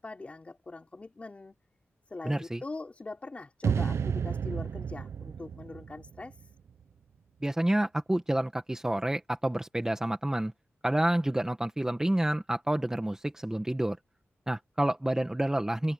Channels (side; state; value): both; normal; correlation 0.97